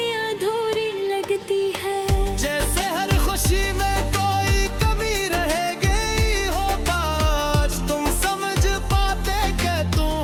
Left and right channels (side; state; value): both; identical; correlation 1.00